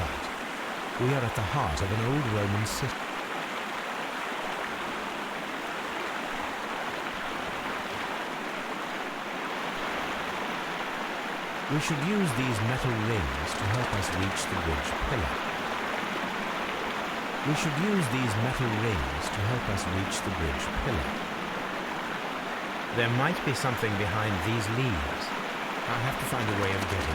We are at the heart of an old Roman city. We should use these metal rings to help us reach the bridge pillar. We should use these metal rings to help us reach the bridge pillar. There might be something behind these leaves. I'll have to find a way of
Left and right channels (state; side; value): identical; both; correlation 1.00